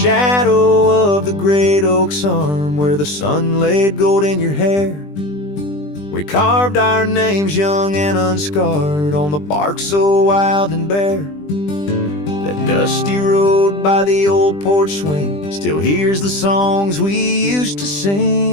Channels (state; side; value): late; right; 20 ms